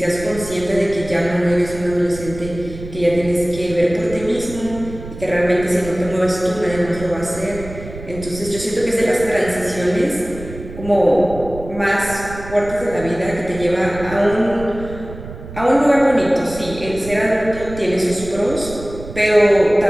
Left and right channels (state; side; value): noise; right; rumble, 13 dB below the sound